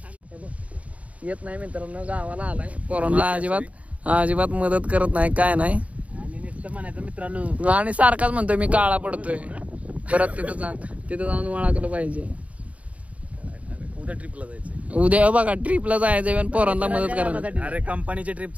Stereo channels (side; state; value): left; late; 0.067 ms